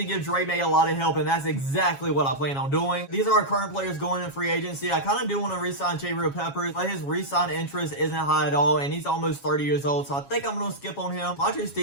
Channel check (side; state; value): right; late; 7.3 ms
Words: give Maye a lot of help, and that's exactly what I plan on doing. These are our current players going in free agency. I kind of do want to re-sign Jabril Peppers, but his re-sign interest isn't high at all, and he's almost 30 years old, so I think I'm going to skip on him. Madden